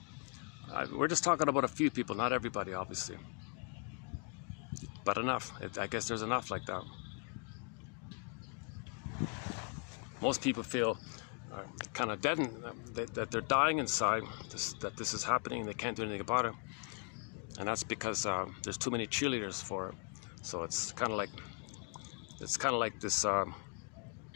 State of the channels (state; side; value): quieter; right; 35.0 dB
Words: We're just talking about a few people, not everybody, obviously. But enough. I guess there's enough like that. Most people feel kind of deadened, that they're dying inside, that this is happening and they can't do anything about it. And that's because there's too many cheerleaders for it. So it's kind of like this